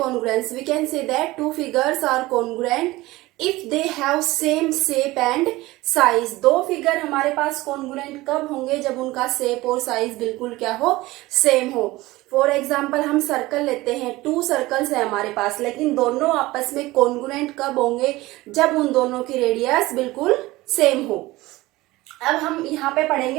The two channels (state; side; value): quieter; left; 19.3 dB